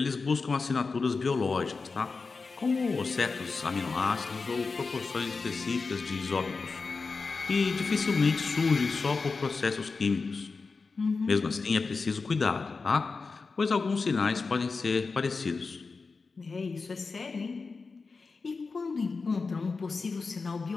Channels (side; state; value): right; quieter; 4.4 dB